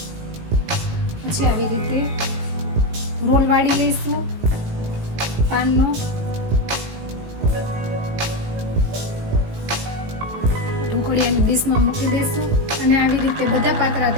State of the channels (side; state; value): left; late; 18 ms